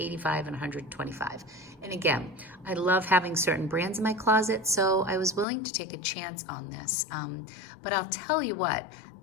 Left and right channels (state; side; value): drops out; right; at 5.5 s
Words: and $125. And again, I love having certain brands in my closet, so I was willing to take a chance on this. But I'll tell you what,